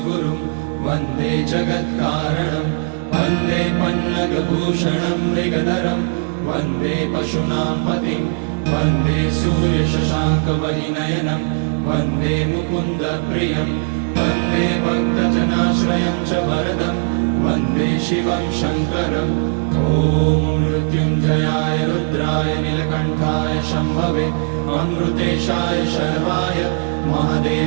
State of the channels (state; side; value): silent; left; 67 dB below the other